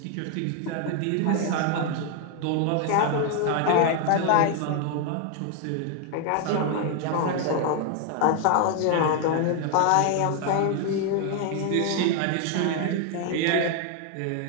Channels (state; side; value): different; both; correlation 0.00